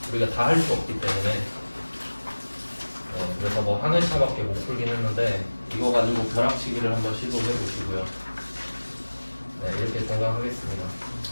우리가 다 할 수 없기 때문에. 네, 그래서 뭐 한 회차밖에 못 풀긴 했는데 이거 가지고 벼락치기를 한번 시도해 보시고요. 네, 이렇게 종강하겠습니다.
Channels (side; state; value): both; inverted; correlation -1.00